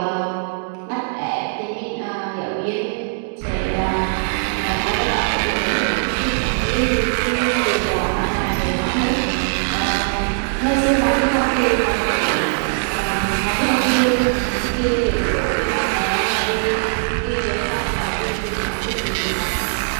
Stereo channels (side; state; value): left; silent; digital silence